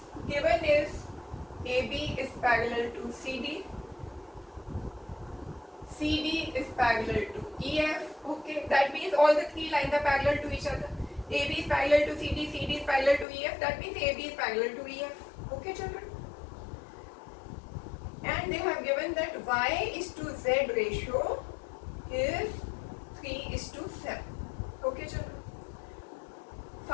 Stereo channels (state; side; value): drops out; right; at 13.2 s